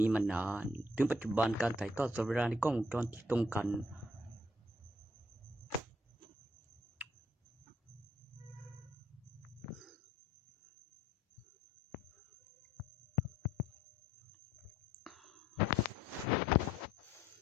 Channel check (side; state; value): both; normal; correlation 0.65